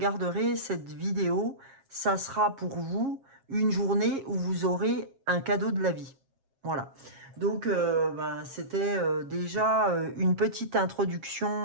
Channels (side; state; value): left; late; 7.4 ms